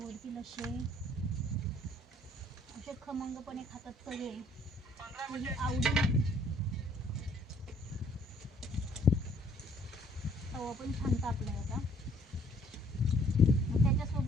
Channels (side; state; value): both; normal; correlation 0.62